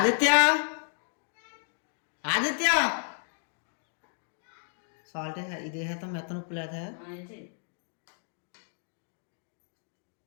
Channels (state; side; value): silent; right; digital silence